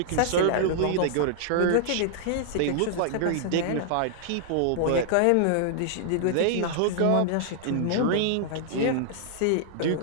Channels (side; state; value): both; different; correlation -0.01